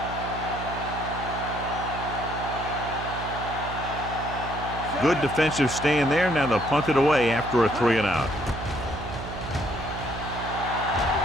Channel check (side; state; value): right; noise; hum, 9 dB below the sound